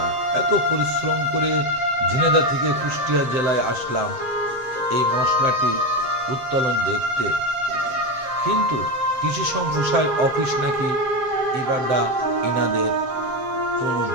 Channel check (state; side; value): late; left; 7.8 ms